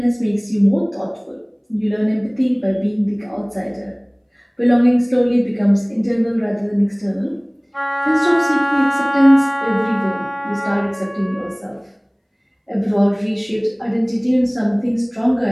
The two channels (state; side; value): identical; both; correlation 1.00